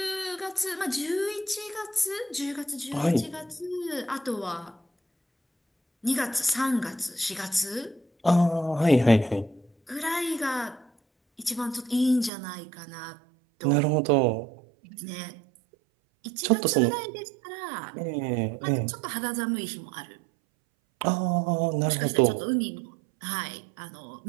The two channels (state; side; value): drops out; left; at 12.3 s